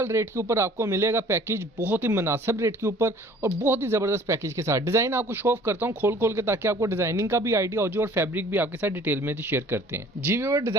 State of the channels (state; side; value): normal; both; correlation 0.52